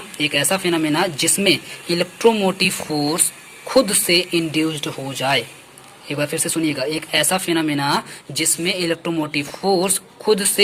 ऐसा फिनोमेना जिसमें इलेक्ट्रोमोटिव फोर्स खुद से इंड्यूस्ड हो जाए। एक बार फिर से सुनिएगा, एक ऐसा फिनोमेना जिसमें इलेक्ट्रोमोटिव फोर्स खुद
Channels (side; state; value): both; identical; correlation 1.00